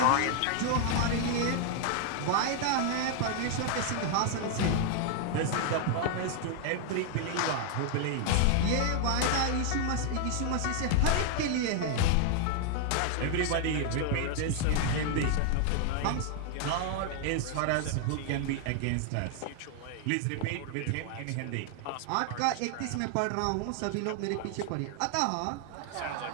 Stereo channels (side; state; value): both; different; correlation 0.00